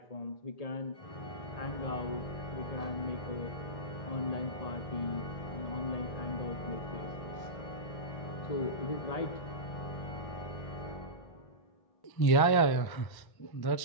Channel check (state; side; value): late; right; 1.1 ms